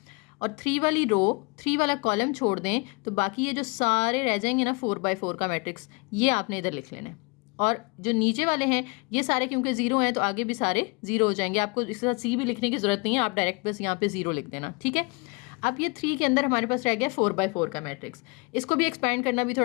और 3 वाली रो 3 वाला कॉलम छोड़ दें तो बाकी ये जो सारे रह जाएंगे ना 4/4 का मैट्रिक्स, ये आपने इधर लिख लेना है। और जो नीचे वाले हैं ये सारे क्योंकि जीरो हैं तो आगे भी सारे जीरो हो जाएंगे, आपको इसके साथ C भी लिखने की जरूरत नहीं है, आप डायरेक्ट बस यहाँ पे जीरो लिख देना, ठीक है। अब ये 3 के अंदर हमारे पास रह गया 4/4 का मैट्रिक्स, इसको भी एक्सपैंड करना भी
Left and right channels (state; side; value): quieter; right; 29.1 dB